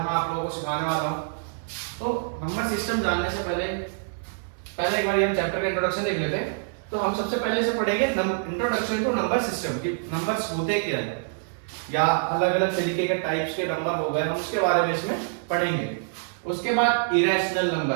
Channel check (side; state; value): left; silent; digital silence